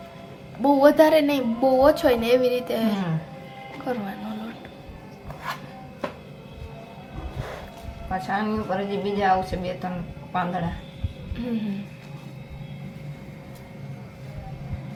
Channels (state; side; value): identical; both; correlation 1.00